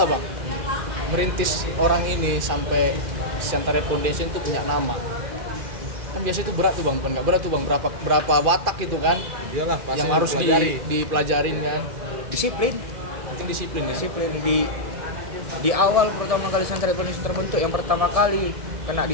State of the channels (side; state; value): left; late; 2.4 ms